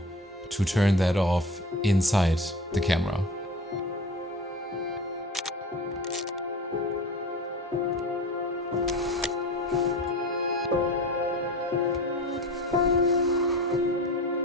to turn that off inside the camera.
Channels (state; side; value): normal; both; correlation 0.34